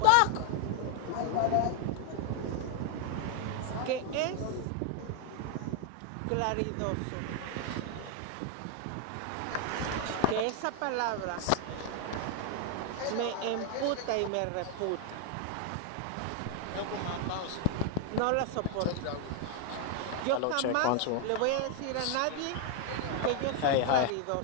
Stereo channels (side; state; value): both; different; correlation 0.00